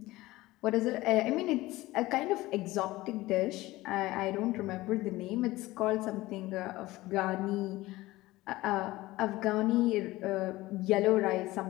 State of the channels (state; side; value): quieter; right; 18.5 dB